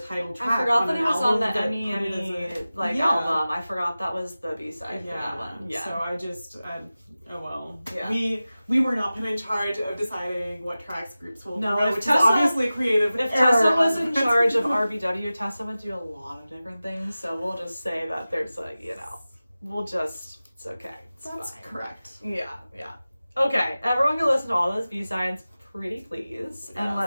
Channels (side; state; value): both; inverted; correlation -0.96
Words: track. I forgot that it was on the Emmy album. I forgot that was the B-side for that one. Yeah. So I just, oh well. Yeah. We were not put in charge of deciding what tracks groups will do, which is obviously creative. If Tessa was in charge of RBW, Tessa would do a lot of different things. So we'll just say that there's it's okay. That's fine. Correct. Yeah. Okay, everyone can listen to all those B-sides. Pretty please. Yes. And